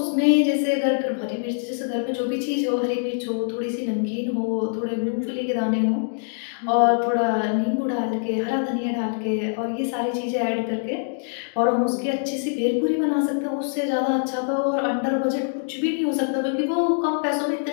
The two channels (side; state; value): right; silent; digital silence